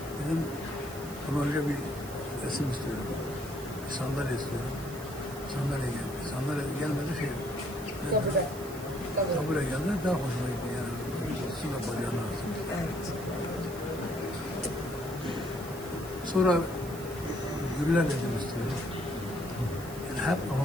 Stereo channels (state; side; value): noise; right; hiss, 15 dB below the sound